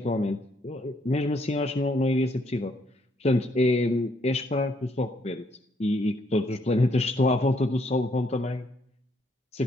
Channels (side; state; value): both; normal; correlation 0.71